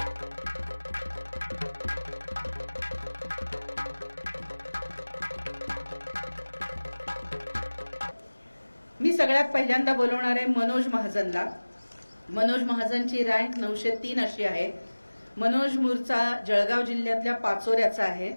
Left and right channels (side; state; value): both; inverted; correlation -1.00